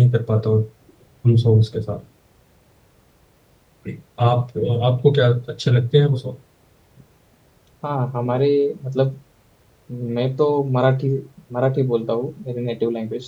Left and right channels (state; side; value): identical; both; correlation 1.00